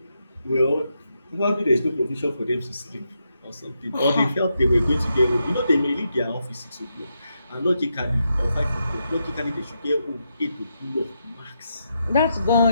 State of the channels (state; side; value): inverted; both; correlation -0.83